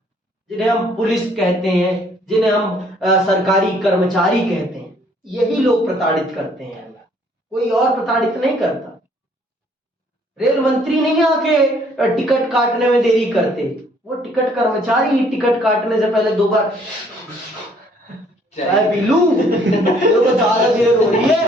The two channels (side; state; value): both; normal; correlation 0.62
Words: जिन्हें हम पुलिस कहते हैं, जिन्हें हम सरकारी कर्मचारी कहते हैं। यही लोग प्रताड़ित करते हैं, कोई और प्रताड़ित नहीं करता। रेल मंत्री नहीं आके टिकट काटने में देरी करते, वो टिकट कर्मचारी ही टिकट काटने से पहले 2 बार चाय पी लूं तो ज्यादा देर हो रही है।